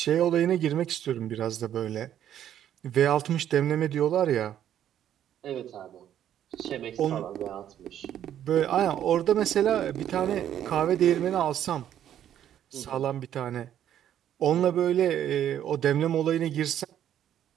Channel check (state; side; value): quieter; left; 10.7 dB